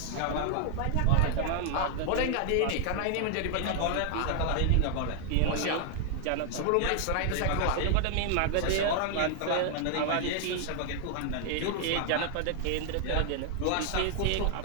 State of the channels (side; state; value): both; different; correlation 0.00